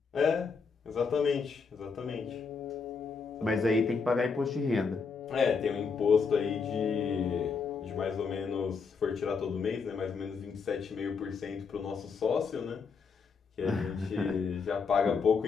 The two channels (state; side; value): quieter; right; 5.3 dB